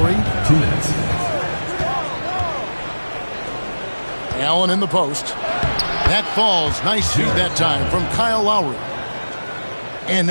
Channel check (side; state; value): both; inverted; correlation -1.00